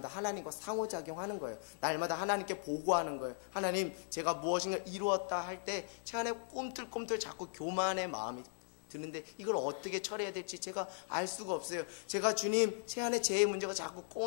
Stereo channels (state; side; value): silent; right; digital silence